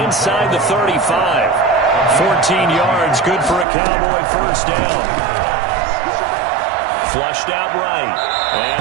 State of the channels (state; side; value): drops out; left; at 3.7 s